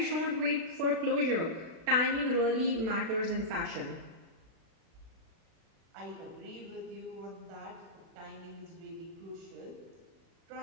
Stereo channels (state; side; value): late; left; 36 ms